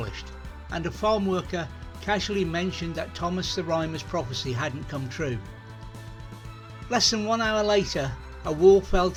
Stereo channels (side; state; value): both; identical; correlation 1.00